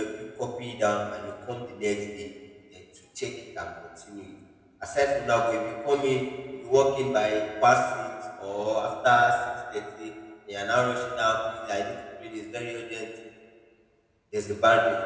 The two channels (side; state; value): both; identical; correlation 1.00